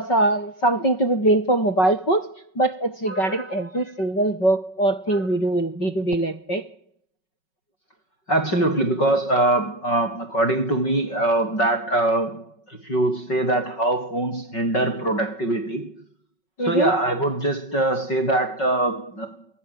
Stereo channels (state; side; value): late; right; 5.4 ms